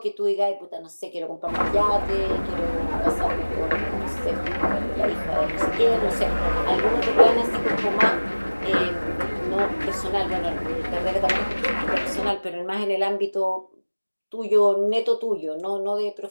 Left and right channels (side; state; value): both; inverted; correlation -1.00